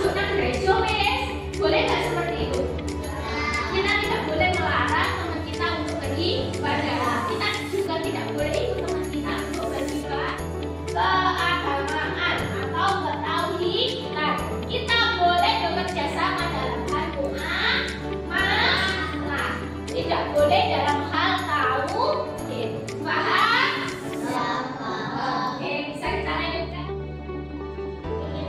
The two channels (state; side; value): identical; both; correlation 1.00